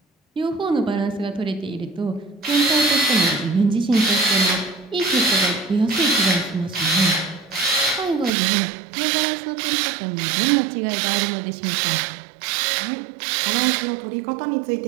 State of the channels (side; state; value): left; drops out; at 8.3 s